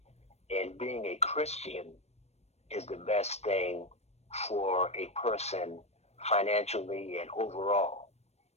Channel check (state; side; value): late; right; 0.31 ms